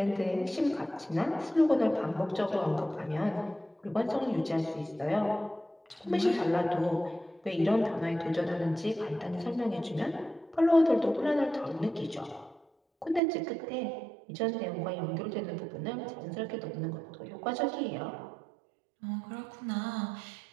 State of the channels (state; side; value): drops out; left; at 13.2 s